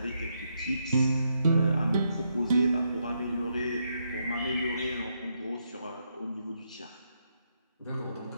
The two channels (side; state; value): both; inverted; correlation -0.79